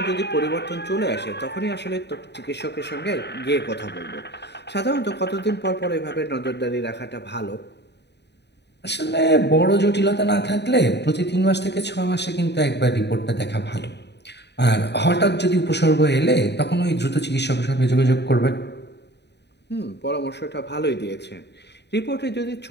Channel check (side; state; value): right; late; 0.50 ms